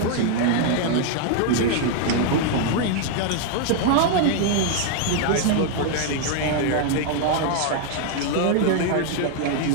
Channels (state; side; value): different; both; correlation 0.00